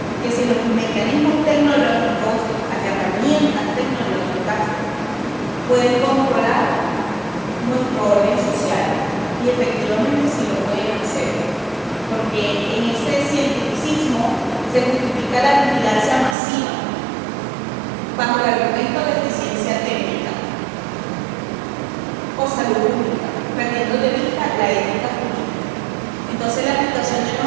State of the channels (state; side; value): drops out; left; at 16.4 s